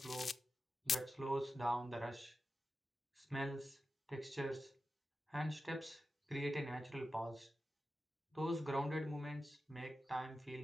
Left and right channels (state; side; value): normal; both; correlation 0.92